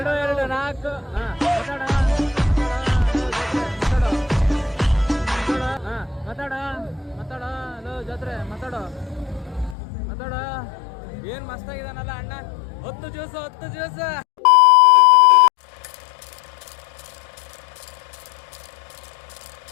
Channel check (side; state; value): right; drops out; at 9.8 s